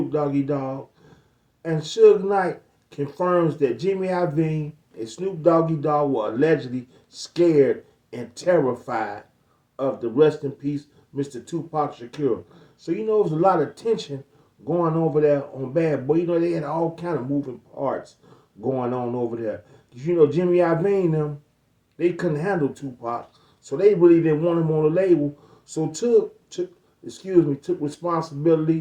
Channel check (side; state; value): both; identical; correlation 1.00